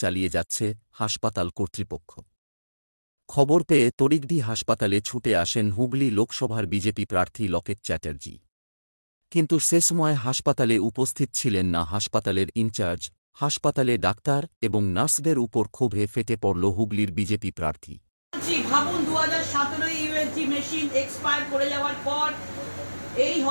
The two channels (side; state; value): both; inverted; correlation -1.00